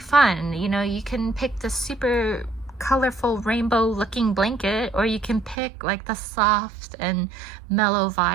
You can pick the super colorful rainbow looking blanket, or you can pick like the soft and mellow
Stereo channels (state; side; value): drops out; left; at 5.6 s